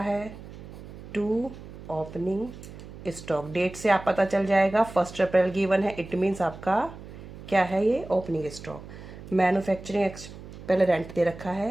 टू ओपनिंग स्टॉक। डेट से आप पता चल जाएगा, 1 अप्रैल गिवन है, इट मीन्स आपका क्या है? ये ओपनिंग स्टॉक। मैन्युफैक्चरिंग पहले रेंट दे रखा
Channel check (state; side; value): noise; right; hum, 15 dB below the sound